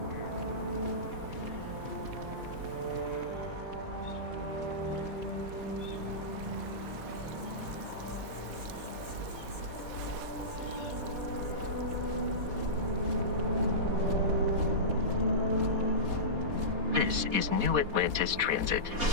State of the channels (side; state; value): left; late; 4.2 ms